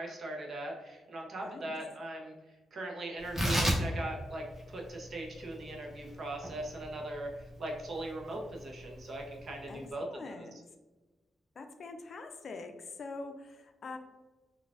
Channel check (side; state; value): both; normal; correlation 0.84